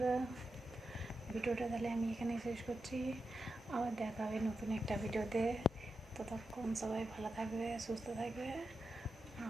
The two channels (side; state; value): both; normal; correlation 0.88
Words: ভিডিওটা তাহলে আমি এখানে শেষ করছি। আবার দেখা হবে নতুন একটা ভিডিওতে। ততক্ষণ সবাই ভালো থাকবে, সুস্থ থাকবে,